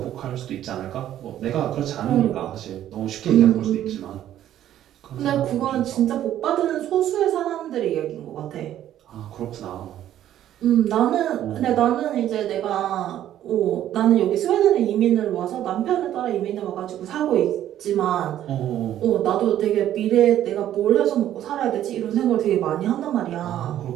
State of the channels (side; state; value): left; quieter; 11.8 dB